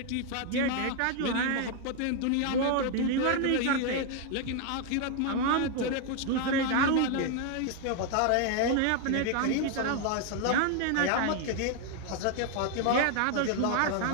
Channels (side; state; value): both; different; correlation 0.01